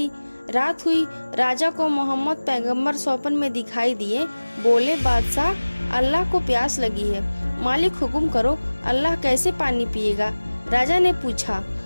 रात हुई। राजा को मोहम्मद पैगंबर स्वप्न में दिखाई दिए। बोले, बादशाह अल्लाह को प्यास लगी है, मालिक हुक्म करो, अल्लाह कैसे पानी पिएगा? राजा ने पूछा।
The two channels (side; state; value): both; inverted; correlation -1.00